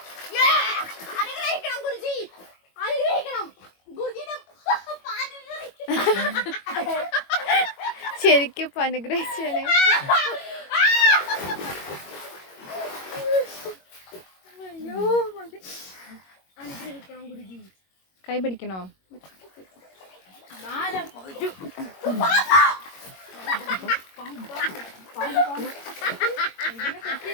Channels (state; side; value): late; right; 21 ms